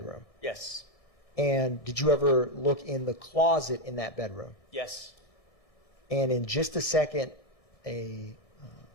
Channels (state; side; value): late; right; 1.6 ms